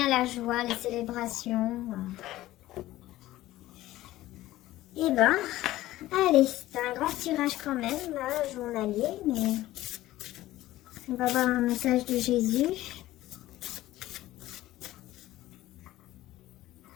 la joie, les célébrations. Et ben, allez, c'est un grand tirage quand même, là, journalier, mais on va voir un message de Jésus.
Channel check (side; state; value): right; quieter; 15.8 dB